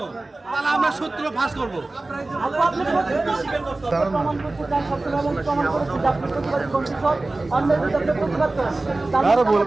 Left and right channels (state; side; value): quieter; left; 3.0 dB